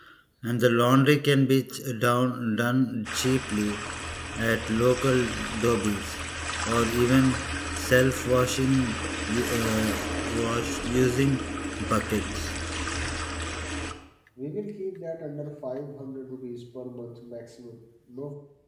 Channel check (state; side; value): identical; both; correlation 1.00